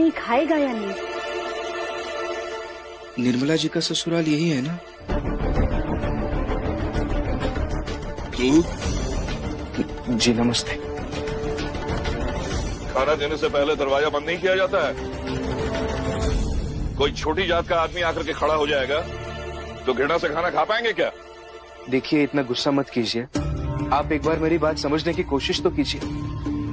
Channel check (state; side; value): identical; both; correlation 1.00